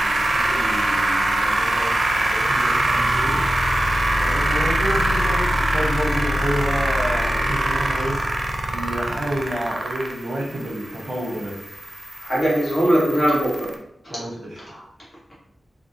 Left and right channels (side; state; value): both; normal; correlation 0.93